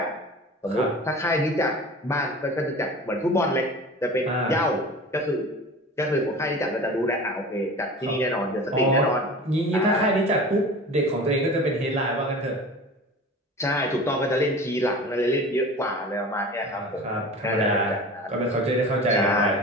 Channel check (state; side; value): normal; both; correlation 0.37